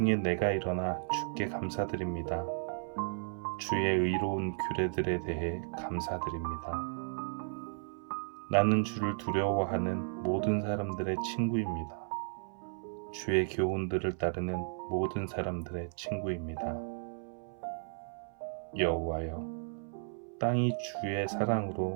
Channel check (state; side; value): silent; left; 55 dB below the other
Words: 내가 일어나 주께 감사드립니다. 주의 의로운 규례들에 대해 감사드립니다. 나는 주를 두려워하는 모든 사람들의 친구입니다. 주의 교훈들을 따르는 모든 사람들의 친구입니다. 여호와여, 땅이 주의